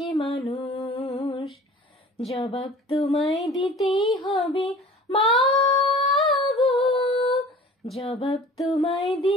মানুষ? জবাব তোমায় দিতেই হবে মা গো, জবাব তোমায়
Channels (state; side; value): normal; both; correlation 0.45